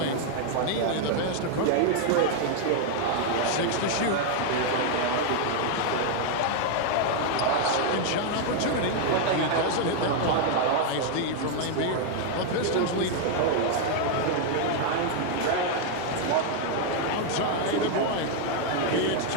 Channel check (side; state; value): both; different; correlation 0.00